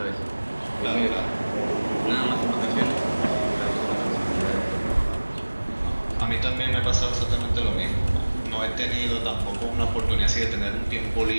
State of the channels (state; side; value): inverted; both; correlation -1.00